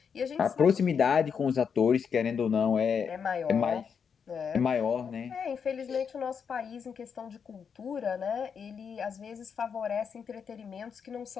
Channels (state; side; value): quieter; right; 6.7 dB